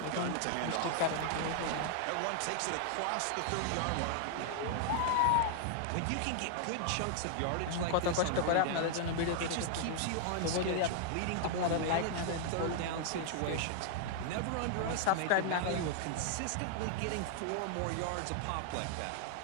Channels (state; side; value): different; both; correlation 0.00